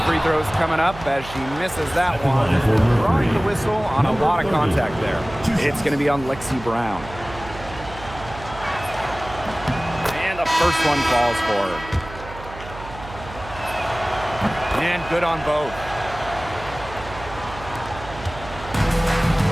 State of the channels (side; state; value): right; noise; hum, 14 dB below the sound